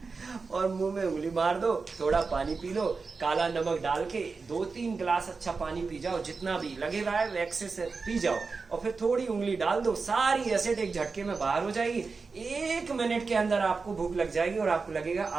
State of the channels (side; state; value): left; quieter; 4.5 dB